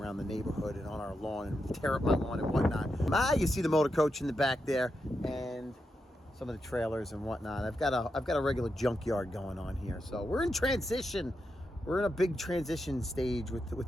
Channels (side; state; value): both; normal; correlation 0.86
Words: the neighborhood and on our lawn and tear up my lawn and whatnot. You see the motor coach in the back there and some of the trailers and whatnot. I've got a regular junkyard going on here. So we're in transition. We're in a big transition stage